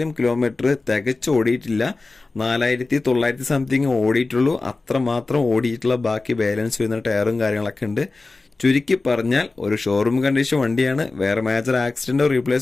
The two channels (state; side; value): quieter; right; 3.5 dB